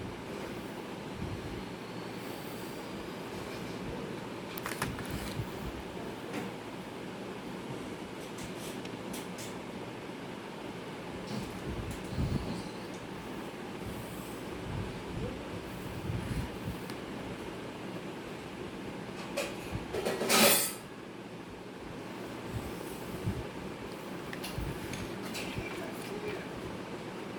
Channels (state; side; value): identical; both; correlation 1.00